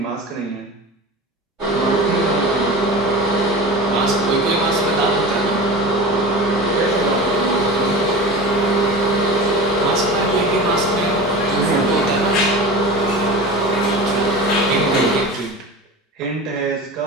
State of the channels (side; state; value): both; normal; correlation 0.31